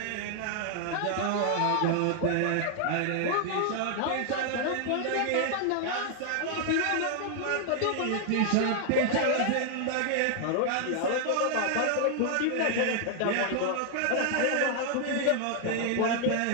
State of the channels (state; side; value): different; both; correlation 0.00